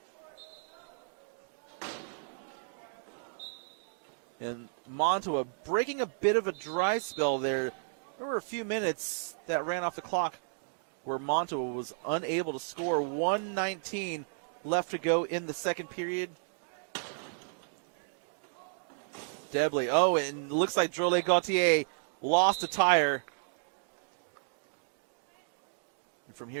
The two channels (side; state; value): left; silent; digital silence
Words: And Monttawa breaking a bit of a dry spell there. There were a few minutes that ran off the clock where Monttawa was unable to score. 1:19 left to go in the second period. Debley, oh, it looks like Drolet Gauthier lost a tire. From